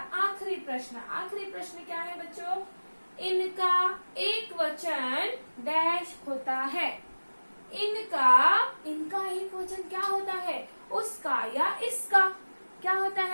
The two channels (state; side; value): inverted; both; correlation -1.00